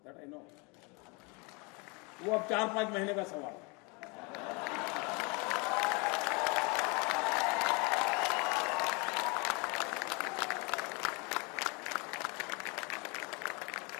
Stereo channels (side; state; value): right; quieter; 30.4 dB